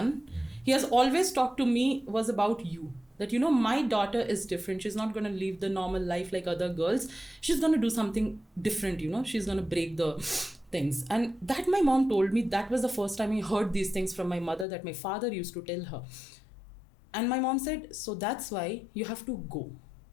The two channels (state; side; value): drops out; right; at 14.7 s